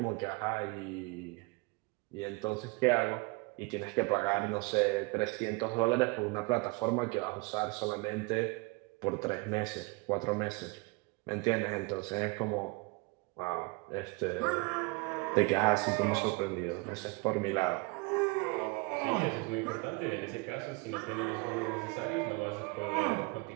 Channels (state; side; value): quieter; left; 27.3 dB